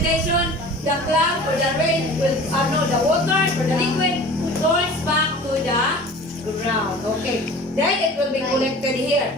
The cloud or the rain will, the water or the liquid turns back to the ground. Okay. Then it will be collected here.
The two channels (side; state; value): both; normal; correlation 0.41